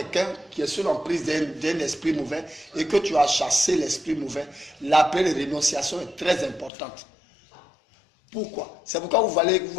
qui est sous l'emprise d'un esprit mauvais et que tu as chassé l'esprit mauvais, la prière de rénonciation est très importante. Pourquoi? C'est pourquoi vous voyez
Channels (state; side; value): drops out; right; at 6.7 s